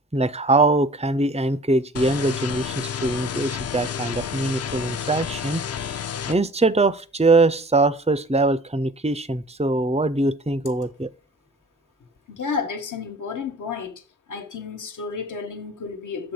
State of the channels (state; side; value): normal; both; correlation 0.47